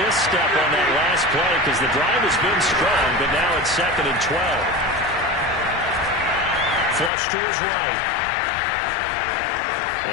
misstep on that last play because the drive has been strong, but now it's 2nd and 12. Flush to his right.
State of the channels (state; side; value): drops out; right; at 7.1 s